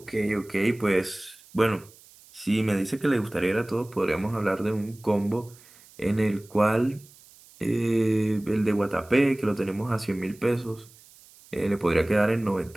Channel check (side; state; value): right; noise; hiss, 25 dB below the sound